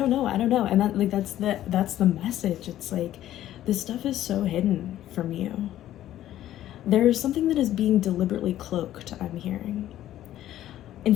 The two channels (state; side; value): quieter; right; 12.9 dB